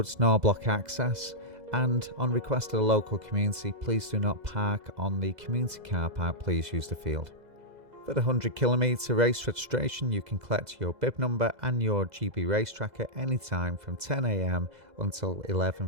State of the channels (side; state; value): left; late; 2.0 ms